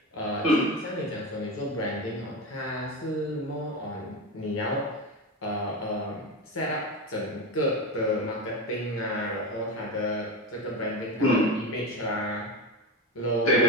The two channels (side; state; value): both; normal; correlation 0.20